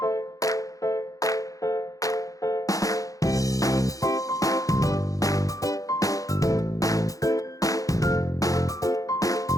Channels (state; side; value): late; right; 0.17 ms